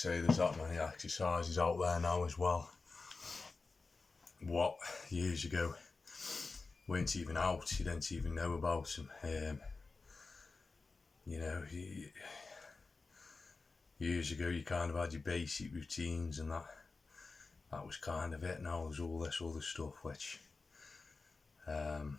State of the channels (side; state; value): right; quieter; 4.0 dB